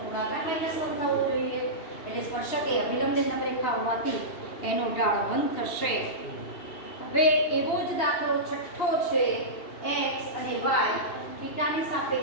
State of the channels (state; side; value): late; right; 2.7 ms